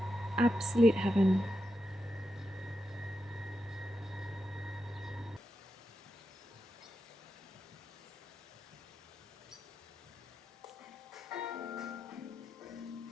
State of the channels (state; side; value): normal; both; correlation 0.87